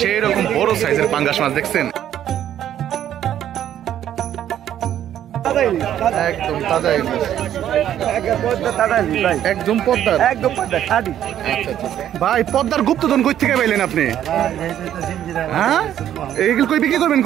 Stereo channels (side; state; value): left; quieter; 10.9 dB